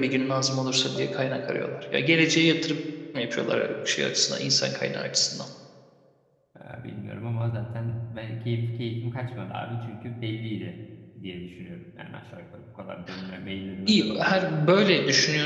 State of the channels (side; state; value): both; identical; correlation 1.00